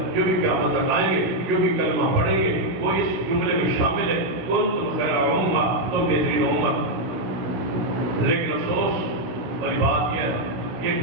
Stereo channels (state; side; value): late; left; 16 ms